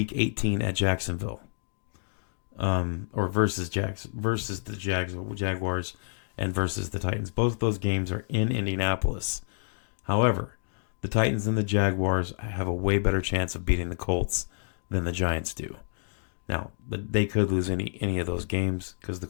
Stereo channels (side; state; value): right; silent; digital silence